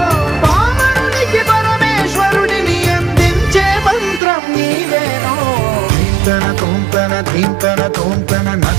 పామరునికి పరమేశ్వరుడిని అందించే మంత్రం నీవేనో ధీంతన తోంతన ధీంతన తోంతన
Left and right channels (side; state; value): left; drops out; at 4.2 s